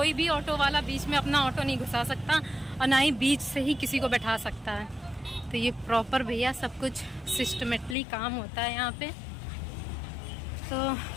भी ऑटो वाला बीच में अपना ऑटो नहीं घुसा सकता, और ना ही बीच से ही किसी को बैठा सकता है। तो ये प्रॉपर भैया सब कुछ सिस्टमेटली काम होता है यहाँ पे। तो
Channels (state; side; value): drops out; right; at 8.0 s